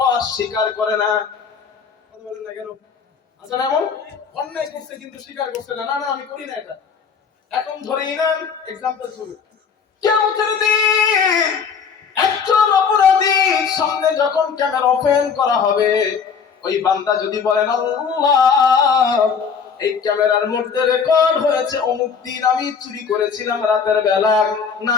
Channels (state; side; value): quieter; right; 6.2 dB